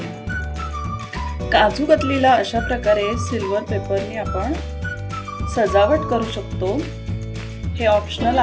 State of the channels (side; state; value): both; identical; correlation 1.00